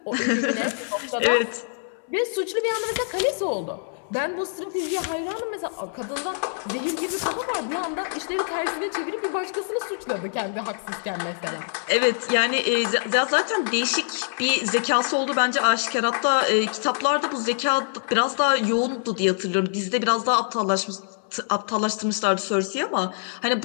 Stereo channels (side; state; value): right; silent; 62 dB below the other